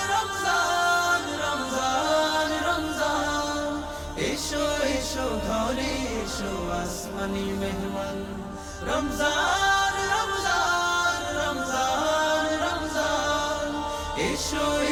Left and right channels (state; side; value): identical; both; correlation 1.00